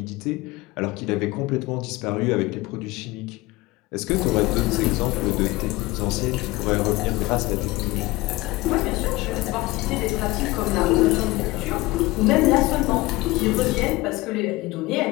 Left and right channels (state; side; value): quieter; right; 20.6 dB